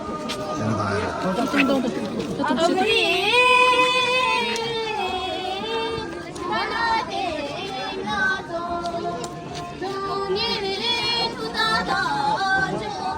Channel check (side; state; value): both; identical; correlation 1.00